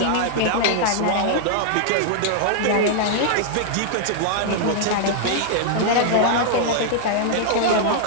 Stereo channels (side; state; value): both; different; correlation -0.01